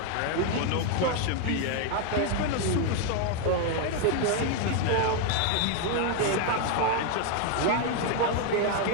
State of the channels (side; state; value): both; different; correlation 0.01